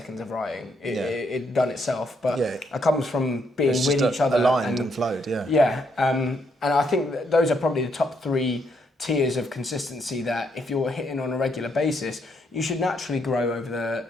of writing. It done itself, but it comes from being with each other. Aligned and flowed, yeah. Yeah, and I think that those are probably the top 3 tiers of consistency that if you're hitting on a regular basis, you should naturally grow over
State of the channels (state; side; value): normal; both; correlation 0.75